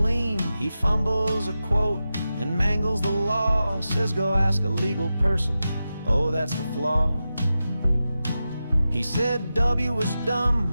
He fumbles a quote and mangles the law, says go ask a legal person, oh that's the flaw. He said W was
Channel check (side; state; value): both; inverted; correlation -0.92